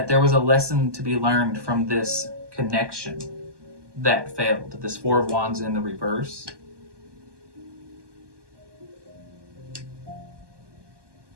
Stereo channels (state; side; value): late; left; 1.2 ms